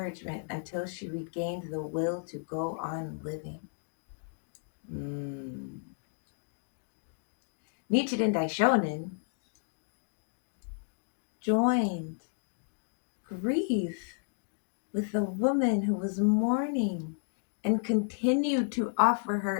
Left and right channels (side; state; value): right; silent; digital silence